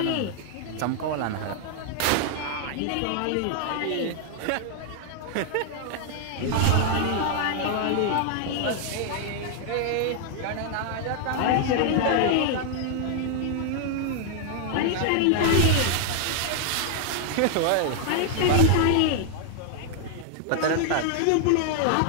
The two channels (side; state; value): both; different; correlation 0.00